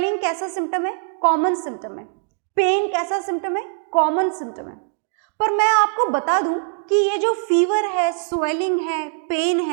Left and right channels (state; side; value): silent; left; digital silence